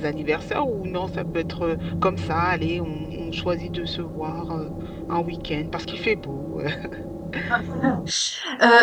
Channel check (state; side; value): identical; both; correlation 1.00